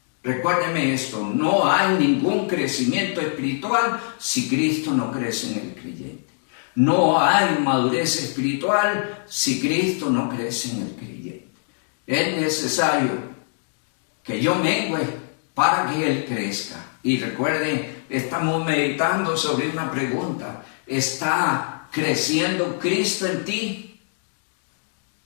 Recuérdeme esto, no hay ningún crecimiento espiritual si Cristo no crece en el creyente. No hay madurez espiritual si Cristo no crece en el creyente. Es necesario que yo mengue para que Él crezca. Y recuerden, estamos meditando sobre una pregunta. ¿Está creciendo Cristo en ti?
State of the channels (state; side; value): silent; right; digital silence